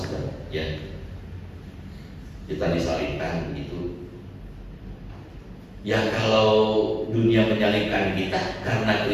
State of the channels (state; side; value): identical; both; correlation 1.00